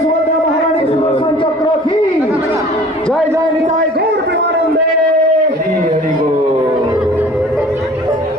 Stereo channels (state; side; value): normal; both; correlation 0.47